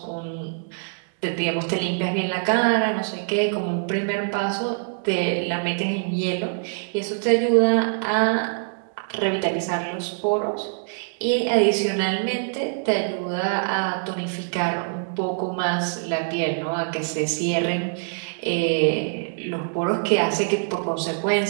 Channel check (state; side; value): silent; left; digital silence